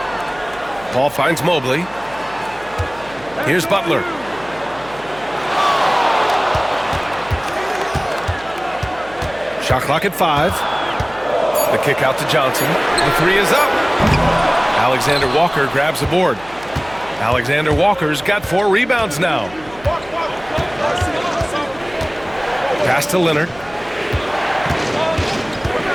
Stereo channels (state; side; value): noise; right; hum, 22 dB below the sound